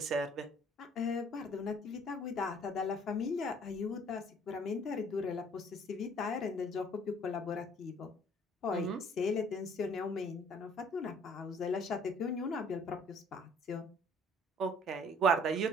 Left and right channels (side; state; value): both; normal; correlation 0.57